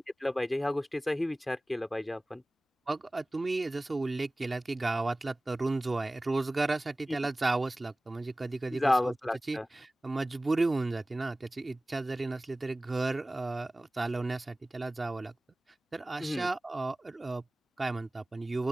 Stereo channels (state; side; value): normal; both; correlation 0.98